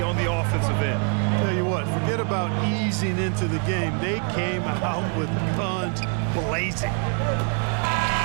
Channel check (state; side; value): quieter; left; 39.4 dB